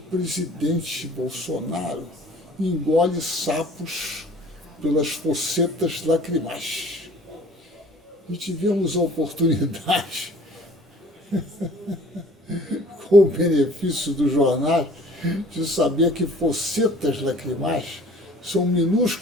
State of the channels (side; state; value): both; normal; correlation 0.51